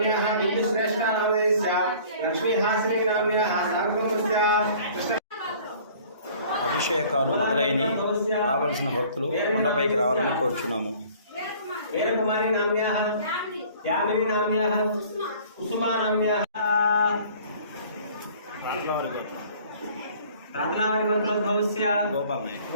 बिन्दुश्रेष्ठा नामधेयस्य लक्ष्मीहासिनी नाम्न्याः सार्वभौमस्य అభిషేకాలు మొదలైన రావాల్సిన భక్తులు కొండపైకి రావాలని కోరుచున్నాము. వీరకుమారి నామ్న్యాః యామిని నామ్న్యాః కుసుమా నామ్న్యాః రాత్లావరి గోత్రోద్భవస్య గోపాలయ్య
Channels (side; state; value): both; inverted; correlation -0.51